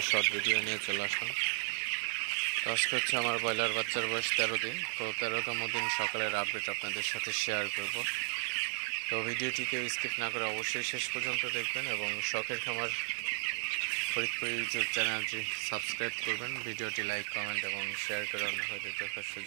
শর্ট ভিডিও নিয়ে চলে আসলাম। তো আজকে হচ্ছে আমার ব্রয়লার বাচ্চার বয়স 13 দিন। তো 13তম দিন সকালের আপডেট আপনাদের সাথে শেয়ার করব। তো ভিডিওটিকে স্কিপ না করে অবশ্যই শেষ পর্যন্ত দেখবেন এবং শখের খামার ফরিদপুর ইউটিউব চ্যানেলটি সাবস্ক্রাইব করবেন। ভিডিওটি লাইক, কমেন্ট এবং শেয়ার করে অন্য হয়তো দেখার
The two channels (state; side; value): silent; left; 55 dB below the other